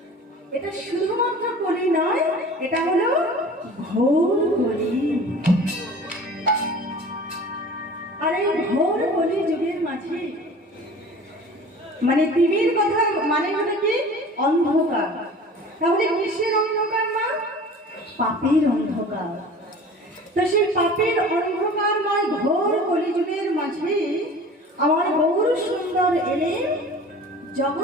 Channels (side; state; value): both; normal; correlation 0.42